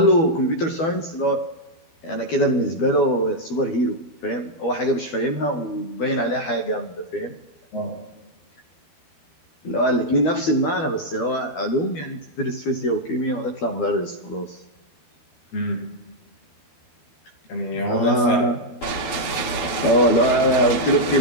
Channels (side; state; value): right; late; 12 ms